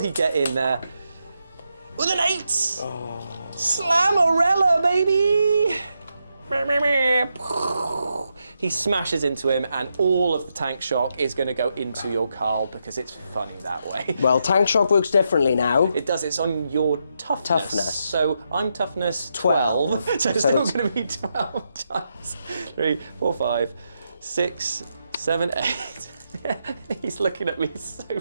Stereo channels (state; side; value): inverted; both; correlation -0.83